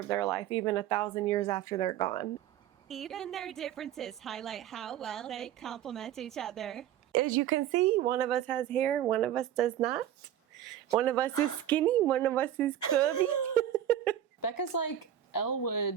their life even 1,000 years after they're gone. Even their differences highlight how well they complement each other. As you can see, one of us has hair, one of us does not. One of us is skinny, one of us is curvy. Becca's like Elle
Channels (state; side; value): quieter; left; 11.1 dB